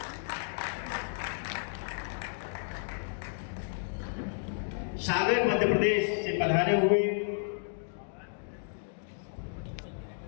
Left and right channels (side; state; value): right; silent; digital silence